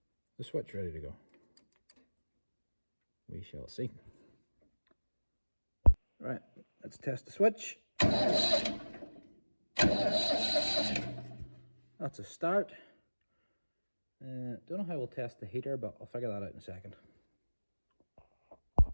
the switch ready to go. We shall see. Right, let's test the switch. That's a start. Don't know how we'll test the heater, but I'll figure that out in a second.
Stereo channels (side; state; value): both; inverted; correlation -1.00